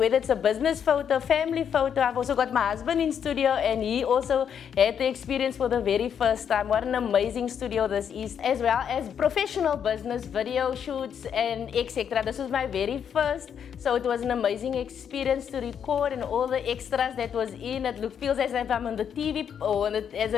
it's a business photo, family photo, I've also got my husband in studio and he also had the experience for the very first time. What an amazing studio this is, as well as professional business video shoots and etc. This was my very first, so it was an amazing experience to record, and all the extras that was in it feels as if I'm on the TV or as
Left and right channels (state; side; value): quieter; right; 8.1 dB